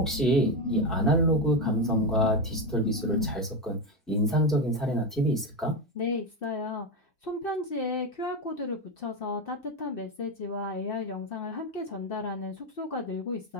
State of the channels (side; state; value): both; normal; correlation 0.12